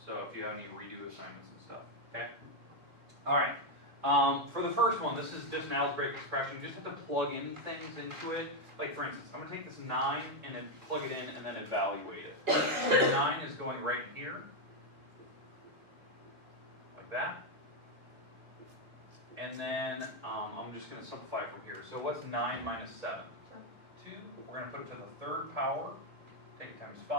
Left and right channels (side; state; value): left; late; 2.3 ms